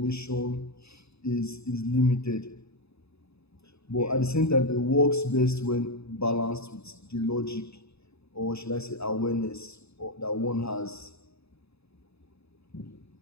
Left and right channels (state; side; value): late; right; 0.79 ms